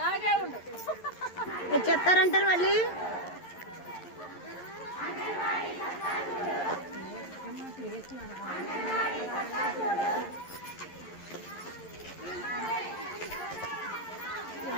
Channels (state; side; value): late; right; 11 ms